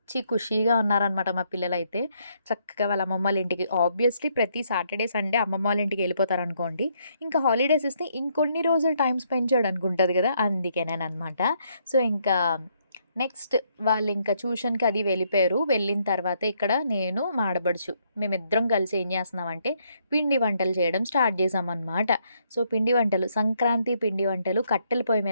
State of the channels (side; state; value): both; inverted; correlation -0.73